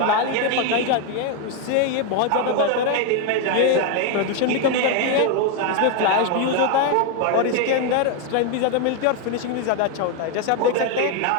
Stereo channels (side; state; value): both; different; correlation 0.01